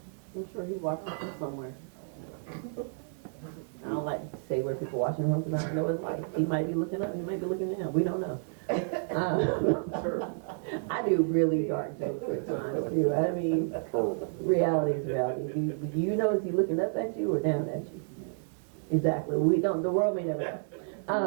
I'm sure he watches from somewhere. I don't like to say where people watching from because I don't know his life. He might be looking up, he might be looking down. We don't know. I do really dark jokes at times too. I mean, reality is reality. Do you know is he looking up at you or down at you? Exactly. We don't. The world may never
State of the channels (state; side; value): silent; left; 57 dB below the other